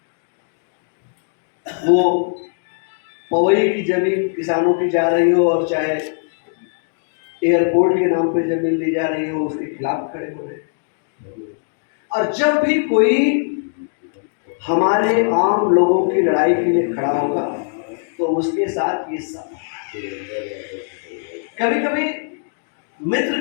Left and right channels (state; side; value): silent; right; digital silence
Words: वो पवई की जमीन किसानों की जा रही हो और चाहे एयरपोर्ट के नाम पे जमीन ली जा रही हो उसके खिलाफ खड़े हो रहे हैं। और जब भी कोई हमारे आम लोगों की लड़ाई के लिए खड़ा होगा तो उसके साथ ये सब, कभी कभी मित्र